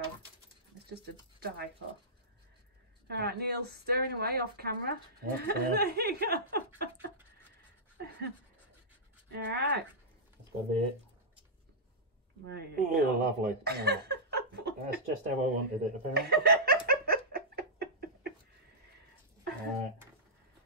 It's just a die for. Alright, Neil's stirring away off camera. Yep, There you go. Alright. That's got to be it. There you Oh, go. lovely. Oh, that's just how I wanted it, apparently. Alright.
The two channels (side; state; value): both; normal; correlation -0.13